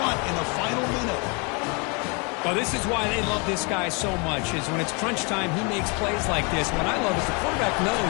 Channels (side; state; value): right; quieter; 32.2 dB